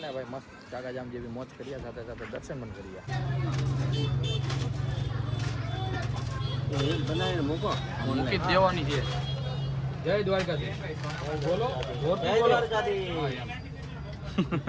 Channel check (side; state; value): both; identical; correlation 1.00